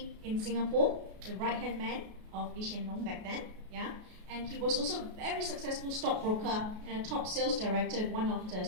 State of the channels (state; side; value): late; left; 33 ms